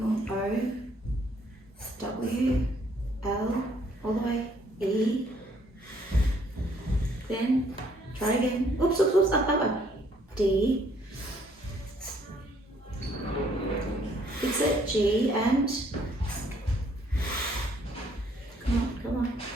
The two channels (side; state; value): both; normal; correlation 0.65